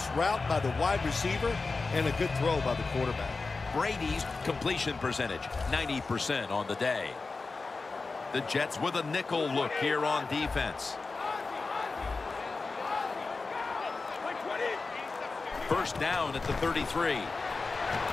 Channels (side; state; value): right; quieter; 4.0 dB